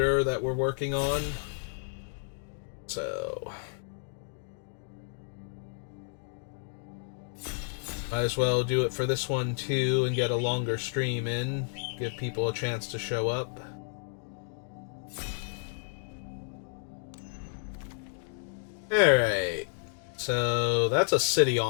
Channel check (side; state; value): right; silent; digital silence